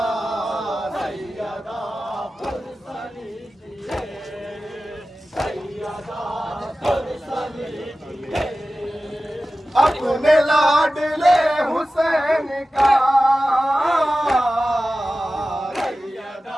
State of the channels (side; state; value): both; normal; correlation 0.95